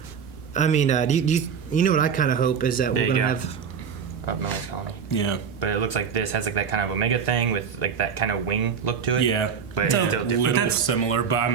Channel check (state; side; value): quieter; left; 6.8 dB